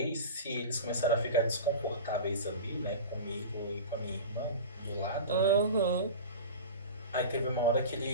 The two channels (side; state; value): both; inverted; correlation -0.31